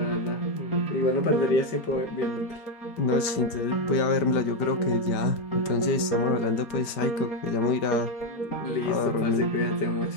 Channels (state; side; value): late; right; 5.0 ms